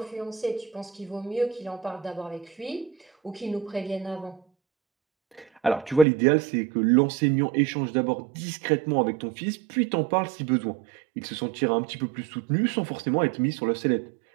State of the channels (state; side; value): drops out; left; at 6.1 s